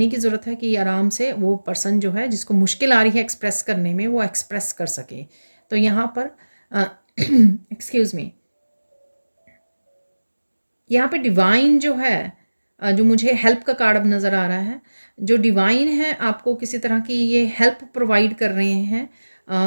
की ज़रूरत है कि आराम से वो पर्सन जो है, जिसको मुश्किल आ रही है एक्सप्रेस करने में, वो एक्सप्रेस कर सके। तो यहाँ पर एक्सक्यूज़ मी, यहाँ पे डिवाइन जो है, जो मुझे हेल्प का कार्ड अब नज़र आ रहा है, जो डिवाइन है आपको किसी तरह की ये हेल्प प्रोवाइड कर रहे हैं,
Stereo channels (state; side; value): inverted; both; correlation -1.00